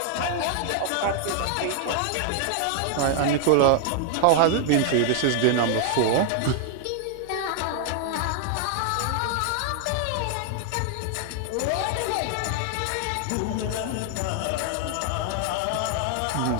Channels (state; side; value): different; both; correlation 0.00